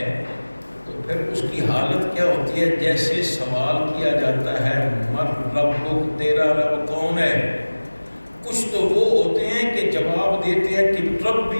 تو پھر اس کی حالت کیا ہوتی ہے؟ جیسے سوال کیا جاتا ہے من ربک، تیرا رب کون ہے؟ کچھ تو وہ ہوتے ہیں کہ جواب دیتے ہیں کہ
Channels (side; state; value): both; inverted; correlation -1.00